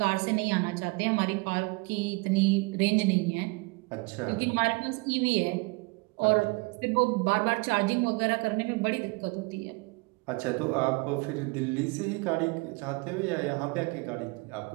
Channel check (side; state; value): left; quieter; 27.4 dB